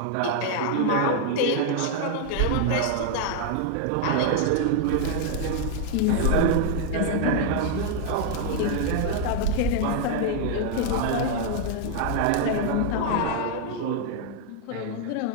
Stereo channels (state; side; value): different; both; correlation 0.00